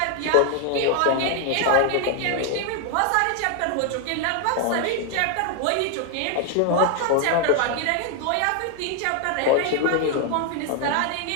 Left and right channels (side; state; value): both; different; correlation 0.01